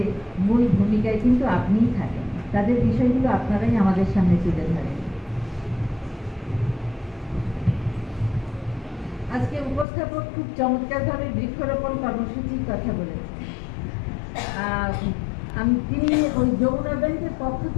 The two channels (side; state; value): right; drops out; at 9.9 s